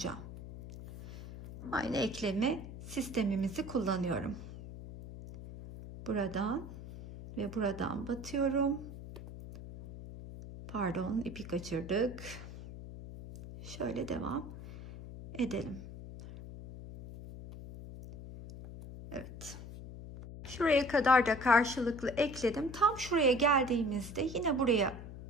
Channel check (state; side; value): noise; left; hum, 12 dB below the sound